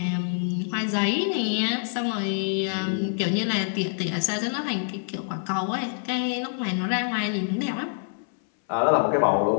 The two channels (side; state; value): right; silent; 61 dB below the other